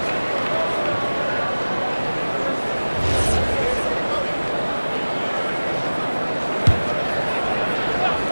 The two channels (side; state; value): both; inverted; correlation -1.00